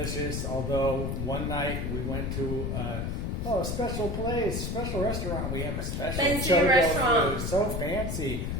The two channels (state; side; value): noise; left; rumble, 2 dB below the sound